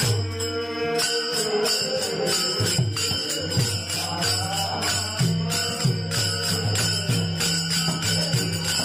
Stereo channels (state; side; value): identical; both; correlation 1.00